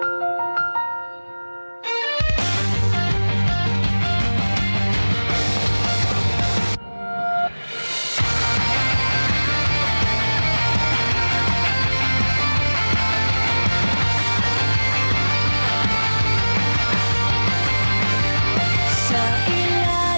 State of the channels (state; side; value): inverted; both; correlation -1.00